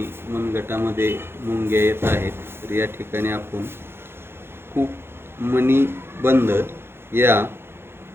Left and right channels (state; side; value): late; left; 0.11 ms